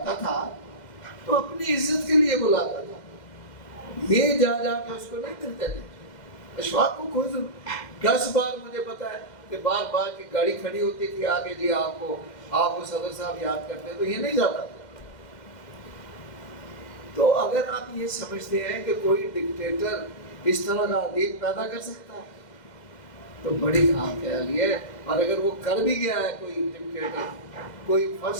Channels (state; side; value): late; right; 2.1 ms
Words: تھا تو اپنی عزت کے لیے بلاتا تھا، یہ جا کے اس کو نہیں ملتے تھے. اشفاق کو کوئی 10 بار مجھے پتا ہے کہ بار بار کی گاڑی کھڑی ہوتی تھی آگے، جی آپ کو صدر صاحب یاد کرتے ہیں، تو یہ نہیں جاتا. تو اگر آپ یہ سمجھتے ہیں کہ کوئی ڈکٹیٹر اس طرح کا ادیب پیدا کر سکتا ہے تو بڑی خام خیالی ہے. اور اگر وہ کر بھی گیا ہے کوئی ڈکٹیٹر، کوئی